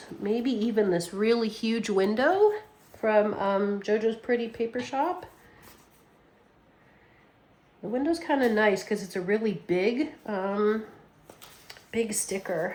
maybe even this really huge window from JoJo's Pretty Paper Shop. The window's kind of nice because it's a really big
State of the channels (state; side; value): identical; both; correlation 1.00